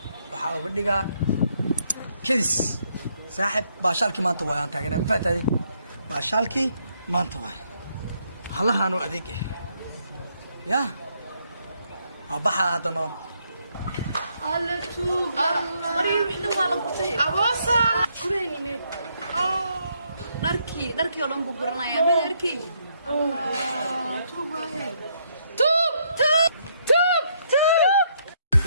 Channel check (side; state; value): both; inverted; correlation -0.73